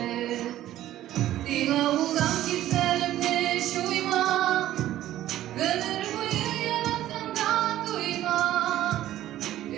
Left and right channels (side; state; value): left; quieter; 13.5 dB